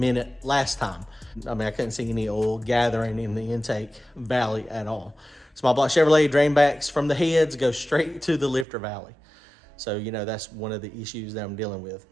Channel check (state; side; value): drops out; left; at 8.7 s